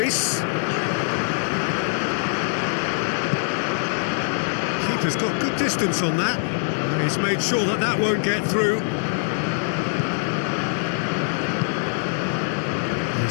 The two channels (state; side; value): silent; right; digital silence